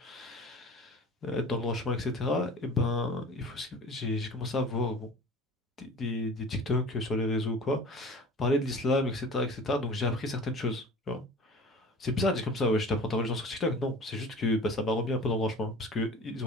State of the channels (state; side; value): normal; both; correlation 0.41